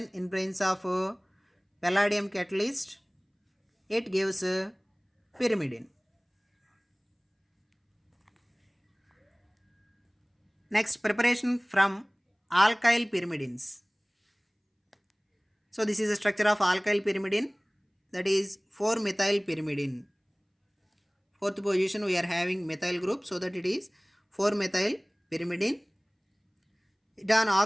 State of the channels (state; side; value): identical; both; correlation 1.00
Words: in presence of palladium catalyst, it gives pyrimidine. Next, preparation from alkyl pyrimidines. So this is a structure of alkyl pyrimidine, that is 4-methyl pyrimidine. Fourth position we are having methyl group, so that it is 4-methyl pyrimidine. It on